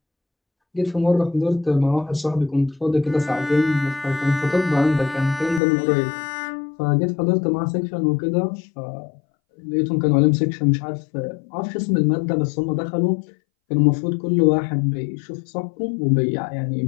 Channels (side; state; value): right; drops out; at 5.6 s